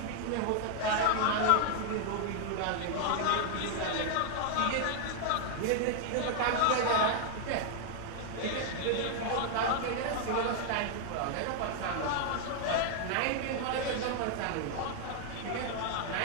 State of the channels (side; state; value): both; different; correlation 0.00